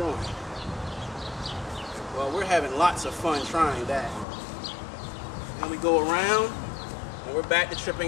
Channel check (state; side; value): drops out; right; at 4.2 s